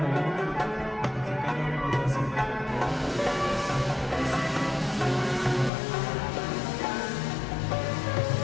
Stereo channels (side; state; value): right; drops out; at 5.7 s